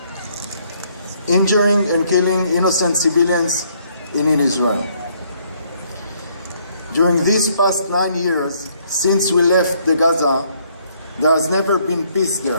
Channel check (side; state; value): both; inverted; correlation -0.67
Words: injuring and killing innocent civilians in Israel. During these past 9 years, since we left the Gaza, there has never been peace